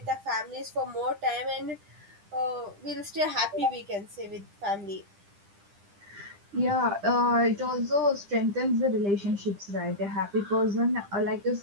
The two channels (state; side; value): late; left; 10 ms